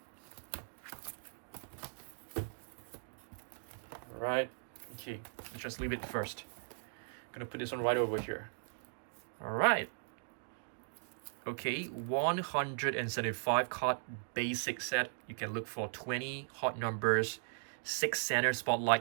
Right, okay, let's just leave it first. Gonna put this one right over here. All right. Okay, 175 card basic set. You can look for 20 hot numbers, 6 center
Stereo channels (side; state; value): left; silent; digital silence